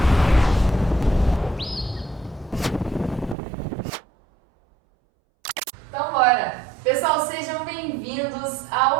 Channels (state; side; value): drops out; left; at 3.4 s